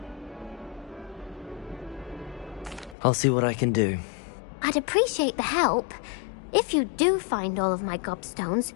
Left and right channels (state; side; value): drops out; right; at 3.0 s